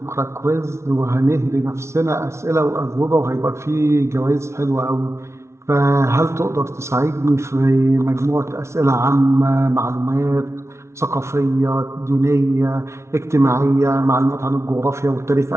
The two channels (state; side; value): late; left; 0.13 ms